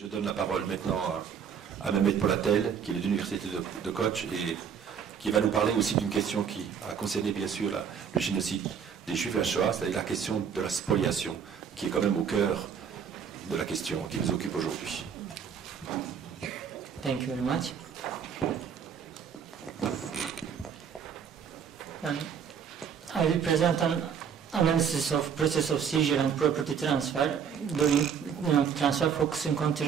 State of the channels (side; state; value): left; quieter; 7.4 dB